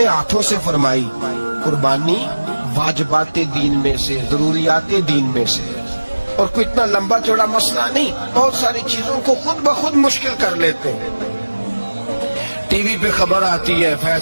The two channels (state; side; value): inverted; both; correlation -1.00